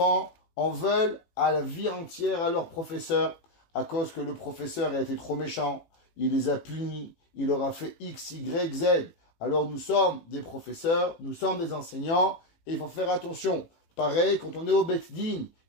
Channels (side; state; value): right; late; 18 ms